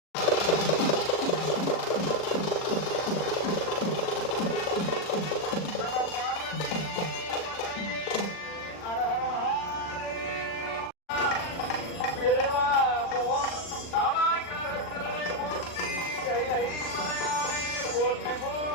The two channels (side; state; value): right; late; 40 ms